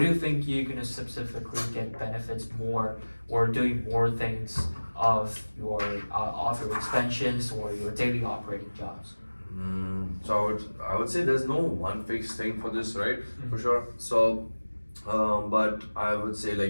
you think you're gonna specifically get benefits more, or doing more things of your expansions or your daily operating jobs? So I would say there's no one fixed thing for this, right? For sure. So, but I would say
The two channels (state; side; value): inverted; both; correlation -1.00